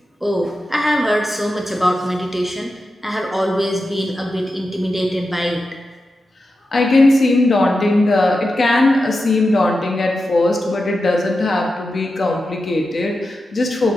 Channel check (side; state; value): both; normal; correlation 0.90